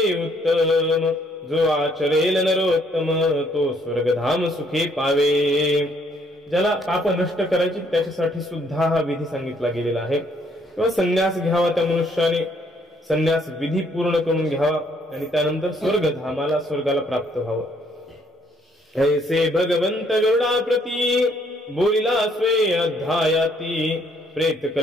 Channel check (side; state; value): both; normal; correlation 0.67